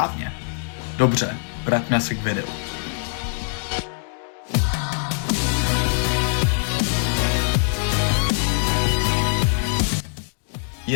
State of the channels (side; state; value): right; silent; 57 dB below the other